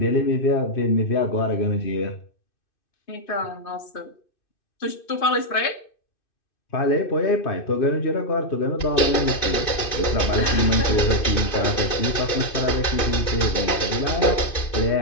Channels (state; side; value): late; right; 2.6 ms